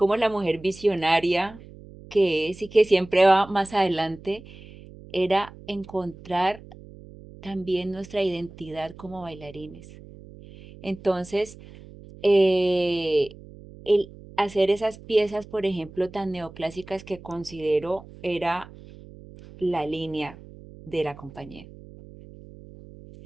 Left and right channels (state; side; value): noise; right; hum, 19 dB below the sound